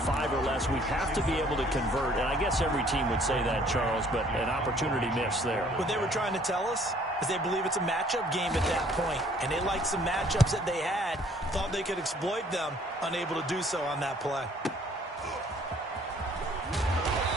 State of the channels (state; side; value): normal; both; correlation 0.59